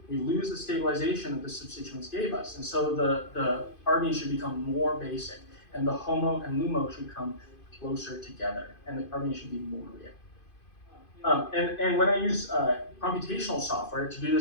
we lose the stabilization that the substituents gave us. And so the carbene should become more basic, and the HOMO and LUMO should come closer together, and the carbene should be more reactive. And when I use computational software to do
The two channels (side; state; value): right; late; 2.5 ms